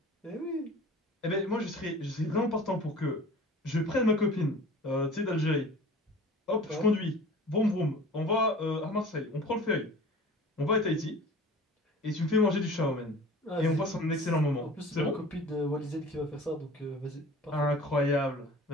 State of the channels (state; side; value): normal; both; correlation 0.42